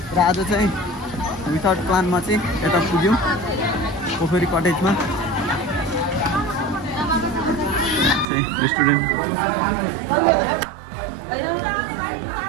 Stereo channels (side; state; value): left; drops out; at 8.2 s